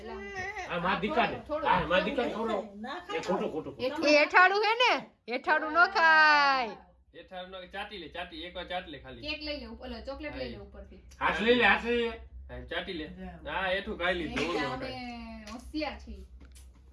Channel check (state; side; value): identical; both; correlation 1.00